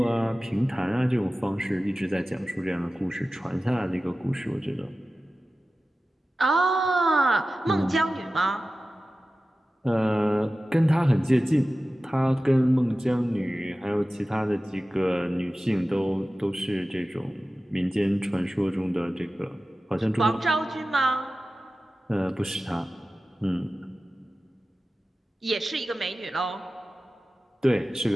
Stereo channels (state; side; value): normal; both; correlation 0.95